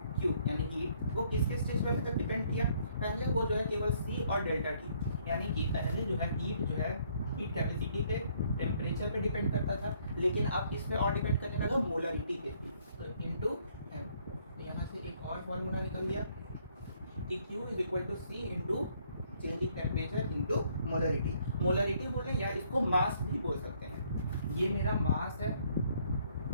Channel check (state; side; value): inverted; both; correlation -0.66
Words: Q यानी हीट, वो किसके स्टेज पे अभी तक डिपेंड किया, पहले वो जो है केवल C और डेल्टा T, यानी कि पहले जो है हीट जो है हीट कैपेसिटी पे, टेम्परेचर पे डिपेंड करता था, लेकिन अब किस पे और डिपेंड करने लगा, मोलरिटी पे। तो इनटू M। तो यहाँ से एक और फॉर्मूला निकल गया कि Q is equal to C into change in temperature into molarity. Molarity बोल रहे हैं या इसको मास भी बोल सकते हैं। ये मेरा मास है